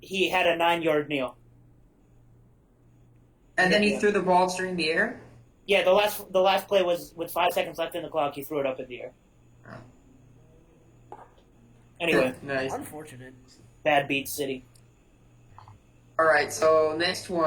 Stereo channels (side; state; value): both; identical; correlation 1.00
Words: he had a 9 yard kneel. And then he threw the ball during the air. Yeah, the last play was with 5 seconds left in the clock. He threw it up in the air. Oh. Anyway, Nice. Unfortunate. bad beat city. All right, so next